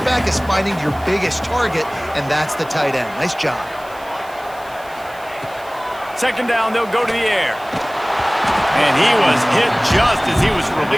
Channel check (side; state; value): right; noise; hiss, 23 dB below the sound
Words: is finding your biggest target, and that's the tight end. Nice job. Second down, they'll go to the air. And he was Hit just as he was